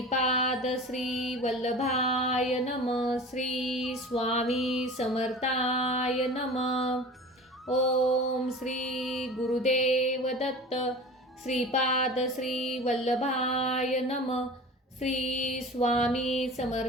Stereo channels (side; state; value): both; normal; correlation 0.38